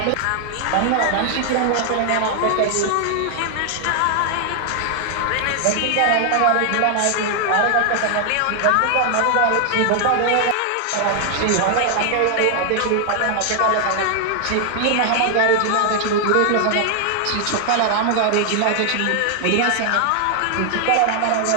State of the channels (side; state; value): both; different; correlation 0.00